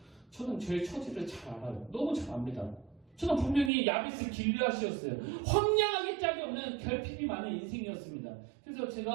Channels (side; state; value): left; drops out; at 3.7 s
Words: 저는 저의 처지를 잘 알아요. 너무 잘 압니다. 저는 분명히 야베스 길르앗이었어요. 황량하게 짝이 없는 결핍이 많은 인생이었습니다. 그래서